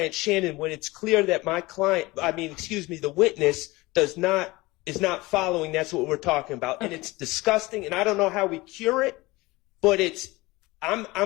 Shannon when it's clear that the witness is not following. That's what we're talking about, and it's disgusting. And I don't know how we cure it, but I'm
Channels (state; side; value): quieter; right; 21.4 dB